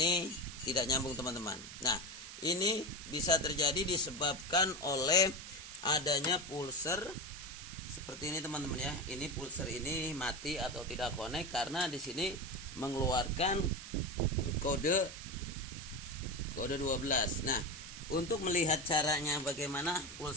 tidak nyambung teman-teman. Nah, ini bisa terjadi disebabkan oleh adanya pulser seperti ini teman-teman ya. Ini pulser ini mati atau tidak connect karena di sini mengeluarkan kode 12. Nah, untuk melihat caranya bagaimana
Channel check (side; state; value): right; noise; hiss, 12 dB below the sound